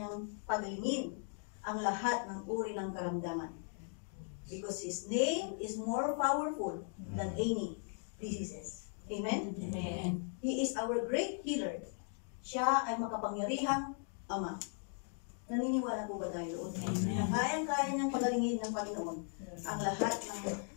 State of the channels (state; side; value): silent; right; 52 dB below the other